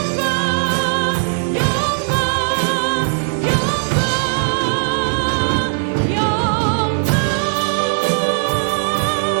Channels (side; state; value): left; silent; digital silence